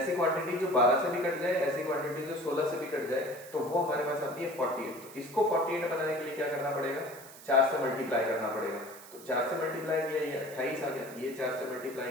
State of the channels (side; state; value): right; noise; hiss, 18 dB below the sound